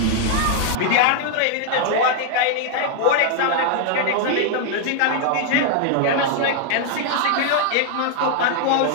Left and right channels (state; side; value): different; both; correlation 0.00